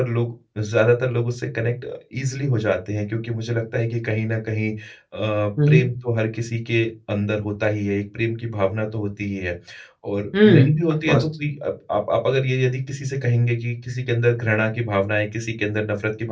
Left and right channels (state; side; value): identical; both; correlation 1.00